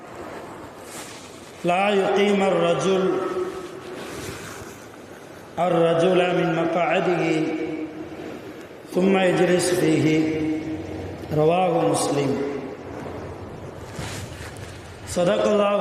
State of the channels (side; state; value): both; identical; correlation 1.00